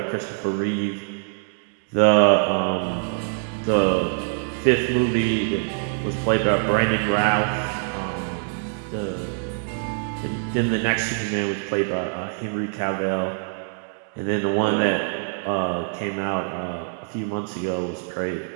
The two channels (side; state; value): left; silent; 56 dB below the other